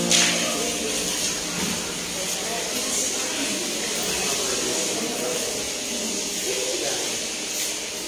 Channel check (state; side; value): identical; both; correlation 1.00